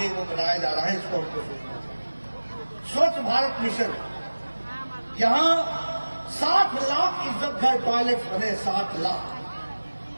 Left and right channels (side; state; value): both; inverted; correlation -1.00